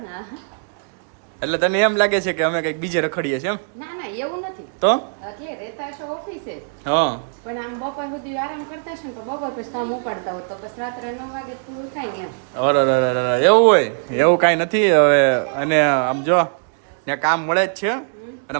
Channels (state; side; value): silent; left; digital silence